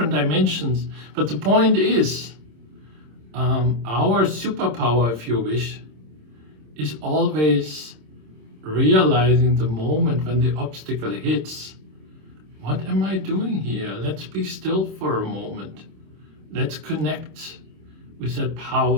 dimensions, but the point is, our superpower, if you wish, is always realizing the moment when the obstacle hits. What am I doing here? Let's be still for a moment. Let's connect with that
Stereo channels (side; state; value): left; late; 26 ms